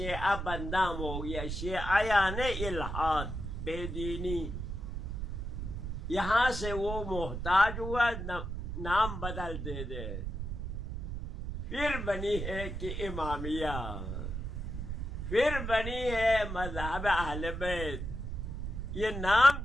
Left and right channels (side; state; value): right; noise; rumble, 5 dB below the sound